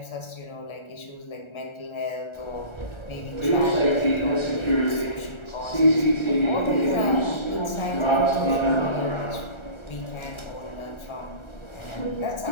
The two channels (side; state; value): right; late; 1.4 ms